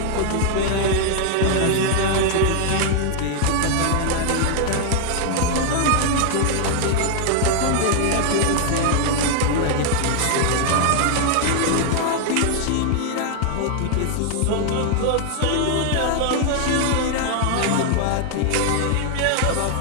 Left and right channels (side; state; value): both; different; correlation 0.00